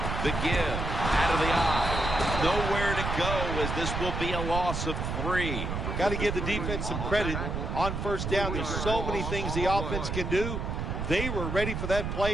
The give out of the eye. Nowhere to go as this will be a loss of 3. Got to give the defense some credit. On first down, there's so many things the offense can do. They were ready for that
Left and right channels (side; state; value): right; noise; rumble, 3 dB below the sound